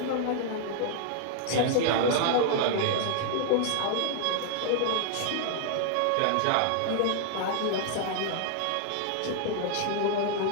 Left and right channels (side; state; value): both; different; correlation 0.00